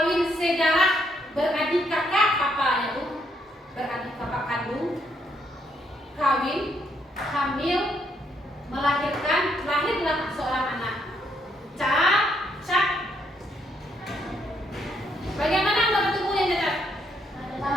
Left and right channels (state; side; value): normal; both; correlation 0.74